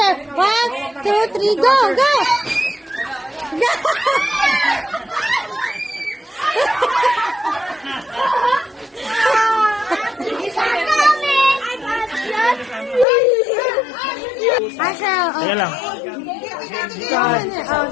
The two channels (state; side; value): drops out; right; at 13.1 s